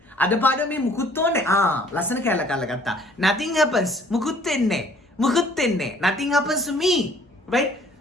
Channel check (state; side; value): normal; both; correlation 0.57